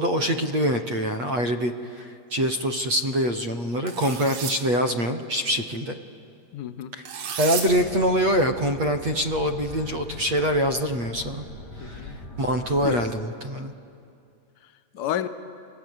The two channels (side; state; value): left; late; 8.4 ms